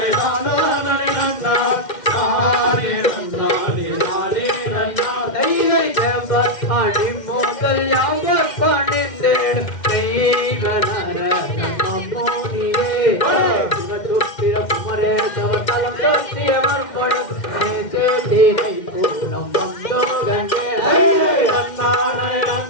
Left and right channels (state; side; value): late; right; 2.1 ms